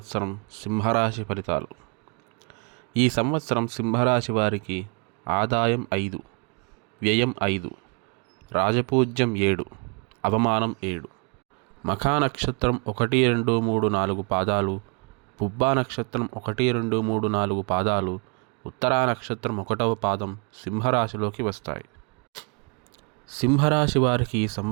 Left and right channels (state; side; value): quieter; left; 35.8 dB